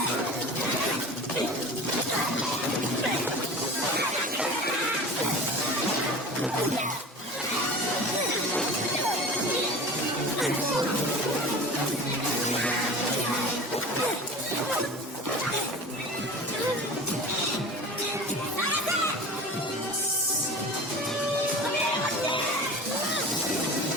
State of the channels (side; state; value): both; normal; correlation 0.35